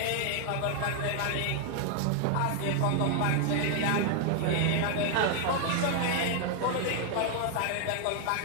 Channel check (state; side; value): different; both; correlation 0.00